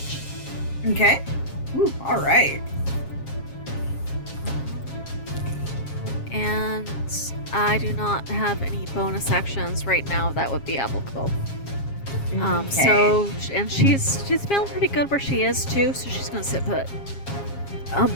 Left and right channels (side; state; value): right; late; 7.4 ms